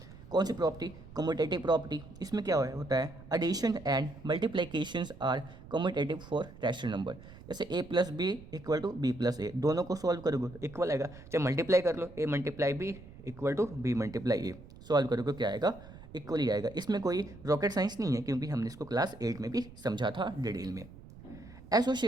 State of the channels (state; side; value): noise; right; rumble, 18 dB below the sound